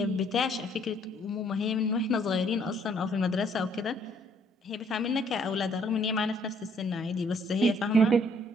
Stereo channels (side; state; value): both; normal; correlation 0.65